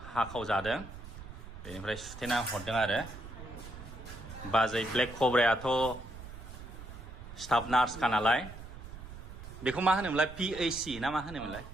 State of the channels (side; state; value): right; noise; rumble, 13 dB below the sound